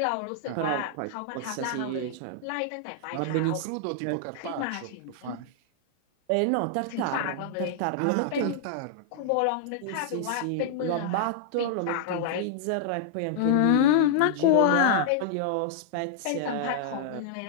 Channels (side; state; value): both; different; correlation -0.01